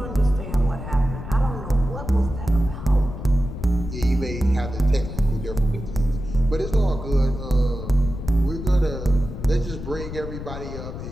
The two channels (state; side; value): noise; left; rumble, 8 dB below the sound